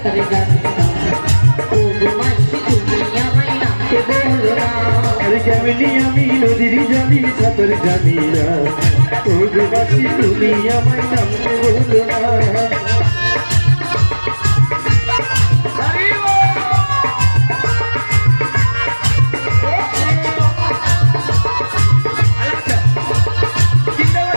জানি না, ও গো মাসি তুমি আমায় নামতে বলো না। আরে কেমনি আমি নদীর জলে সাঁতার জানি না, ও গো মাসি তুমি আমায় নামতে বলো না।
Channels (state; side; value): inverted; both; correlation -1.00